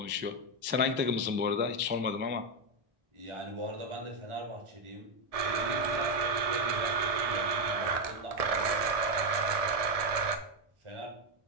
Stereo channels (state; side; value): late; left; 1.7 ms